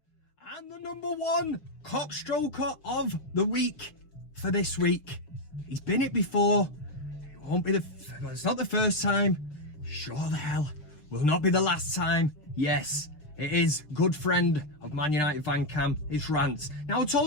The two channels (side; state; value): right; late; 6.7 ms